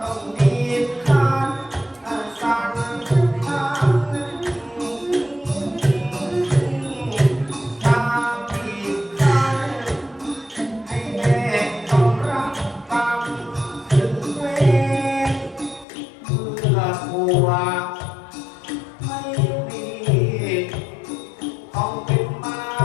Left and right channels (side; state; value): right; drops out; at 15.9 s